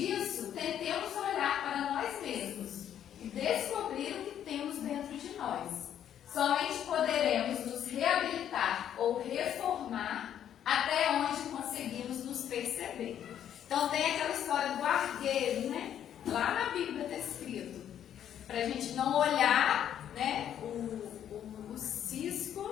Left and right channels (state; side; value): quieter; right; 10.0 dB